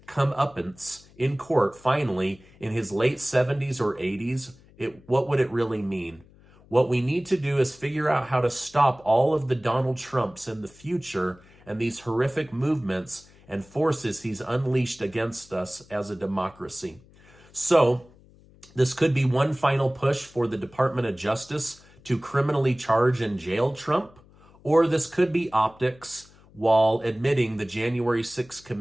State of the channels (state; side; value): noise; left; hum, 26 dB below the sound